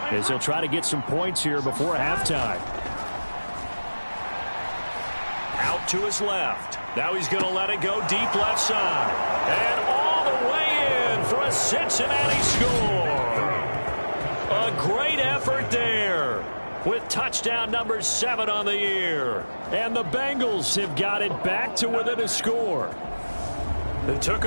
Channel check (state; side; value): inverted; both; correlation -1.00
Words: as they'll try to get some points here before halftime. Out to his left. Now he's going to let it go deep left side. And all the way in for a Cincinnati score. A great effort there with touchdown number 7 on the year. And the Bengals have got it back to within a score. It took